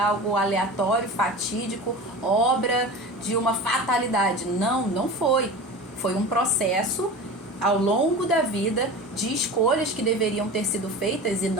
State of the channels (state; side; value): normal; both; correlation 0.33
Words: aleatório, fatídico, obra de uma fatalidade. Não, não foi. Foi um processo ao longo da vida de escolhas que deveriam ter sido feitas e